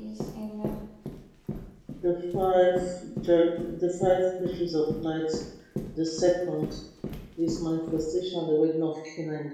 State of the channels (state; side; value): identical; both; correlation 1.00